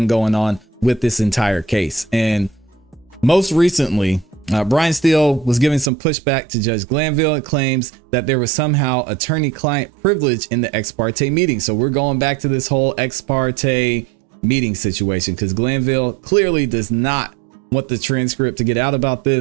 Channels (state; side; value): drops out; left; at 5.9 s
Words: going on with this entire case. And most recently, Brian Steele was giving some pushback to Judge Glanville. It claims that there was somehow attorney-client privilege in the ex parte meeting. So we're going back to this whole ex parte meeting situation because Glanville clearly does not want the transcript to get out about